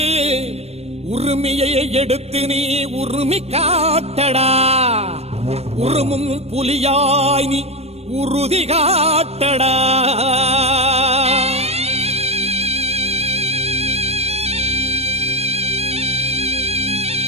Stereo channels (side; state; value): left; late; 0.30 ms